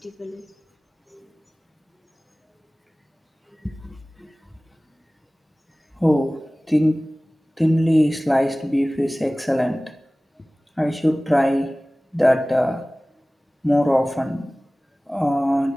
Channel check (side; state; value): both; normal; correlation 0.98